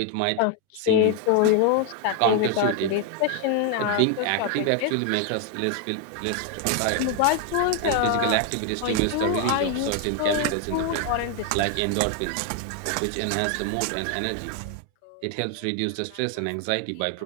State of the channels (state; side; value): different; both; correlation 0.01